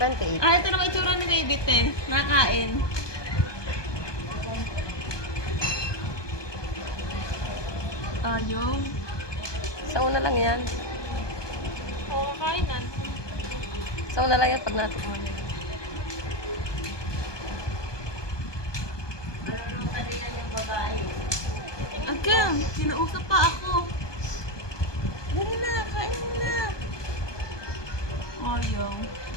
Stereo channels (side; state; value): right; late; 1.2 ms